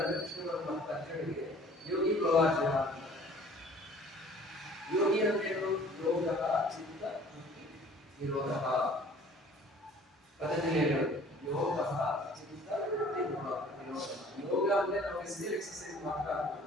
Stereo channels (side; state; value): both; normal; correlation 0.51